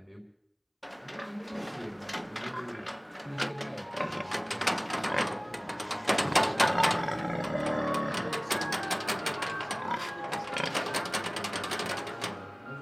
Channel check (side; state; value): both; identical; correlation 1.00